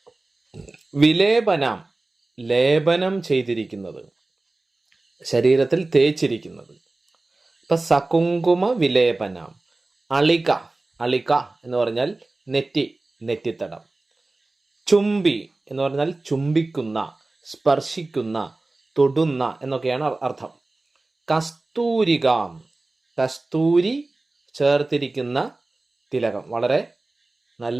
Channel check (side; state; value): left; quieter; 3.1 dB